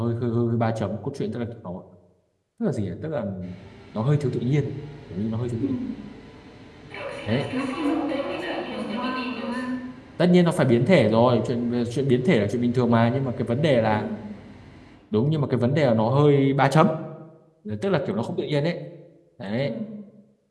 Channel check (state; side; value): identical; both; correlation 1.00